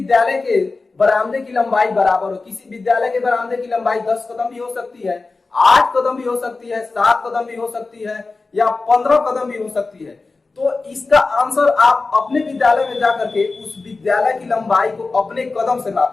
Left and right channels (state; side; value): quieter; right; 3.8 dB